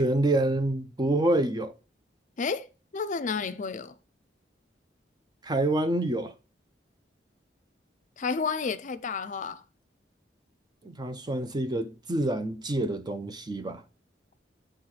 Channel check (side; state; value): both; normal; correlation 0.56